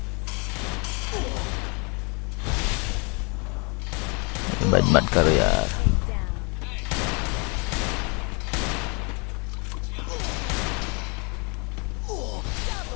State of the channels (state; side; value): quieter; right; 32.8 dB